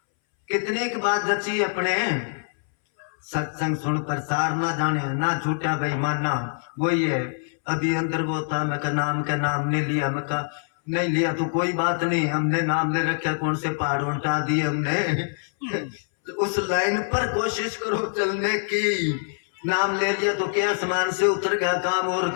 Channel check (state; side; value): silent; right; 62 dB below the other